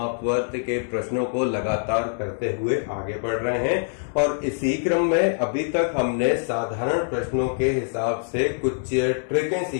के प्रश्नों को लगातार करते हुए आगे बढ़ रहे हैं और इसी क्रम में अभी तक हमने साधारण प्रश्नों के हिसाब से कुछ ट्रिकें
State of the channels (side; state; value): right; silent; digital silence